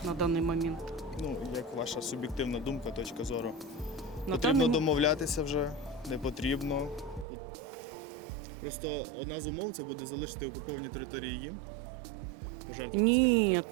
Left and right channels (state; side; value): drops out; left; at 7.2 s